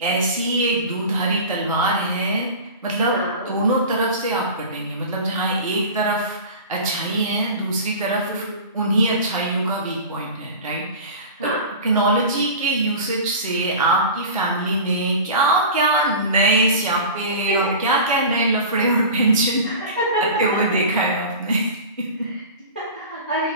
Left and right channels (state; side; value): inverted; both; correlation -0.34